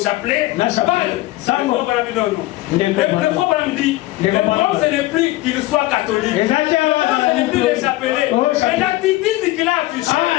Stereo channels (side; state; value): right; quieter; 18.2 dB